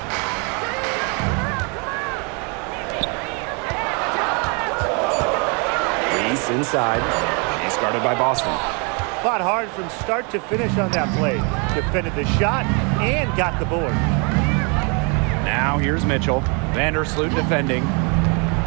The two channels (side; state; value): left; quieter; 34.0 dB